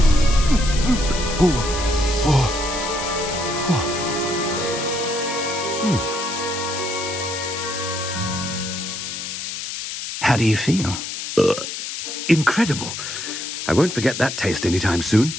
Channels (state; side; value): noise; left; hiss, 6 dB below the sound